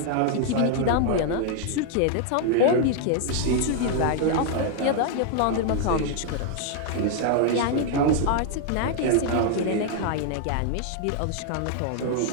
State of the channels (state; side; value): different; both; correlation 0.00